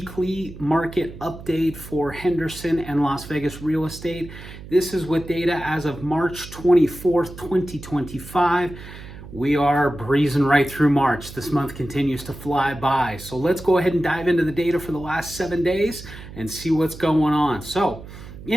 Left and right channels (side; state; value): right; noise; hum, 15 dB below the sound